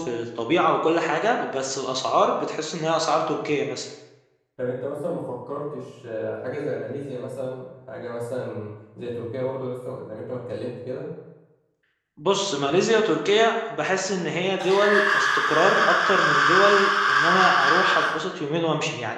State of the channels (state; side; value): identical; both; correlation 1.00